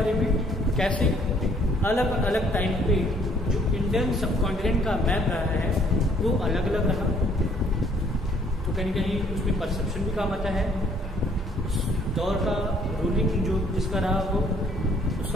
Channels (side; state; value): both; normal; correlation 0.62